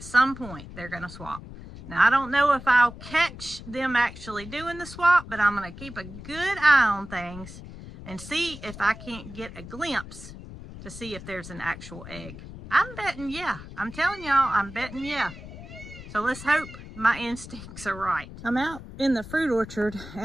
some point they're gonna swap. Now, I don't know if I'll catch them actually doing the swap, but I'm going to keep a good eye on things and see if I can't get a glimpse to see if there's an actual egg. I'm betting yeah. I'm telling y'all, I'm betting yeah. So let's hope my instincts are right. I'm out in the fruit orchard,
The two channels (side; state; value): left; noise; rumble, 14 dB below the sound